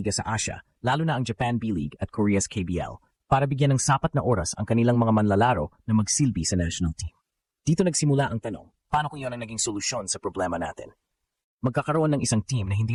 sa Asia, lalo na ang Japan B-League at Korea's KBL, para bigyan ng sapat na oras ang kanilang mga manlalaro na magsilbi sa national team. Dito nagsimula ang tanong, paano kung yun ang naging solusyon sa problema natin? Magkakaroon ng isang team na hindi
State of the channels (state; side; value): identical; both; correlation 1.00